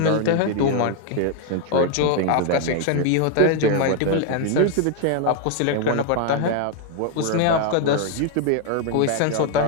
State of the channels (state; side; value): different; both; correlation 0.01